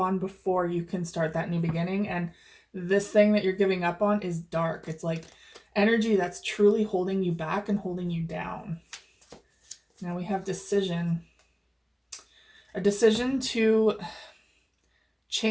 before you can start that new beginning. And this thing that you're giving up on is dark. It's like energy that's truly holding you back and holding you down. Now we have decision. A decision to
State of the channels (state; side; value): identical; both; correlation 1.00